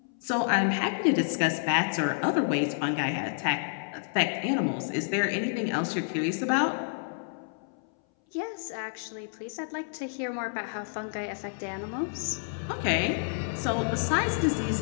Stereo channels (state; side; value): silent; right; 58 dB below the other